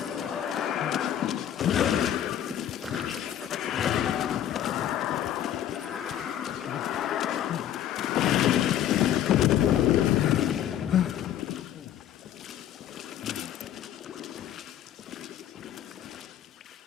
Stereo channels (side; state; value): right; quieter; 10.9 dB